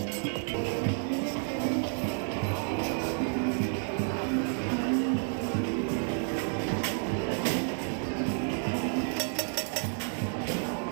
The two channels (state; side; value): silent; left; 57 dB below the other